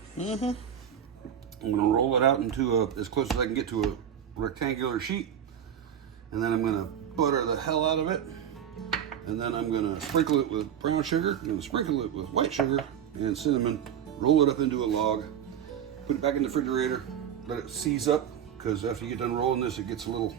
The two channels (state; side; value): quieter; left; 9.1 dB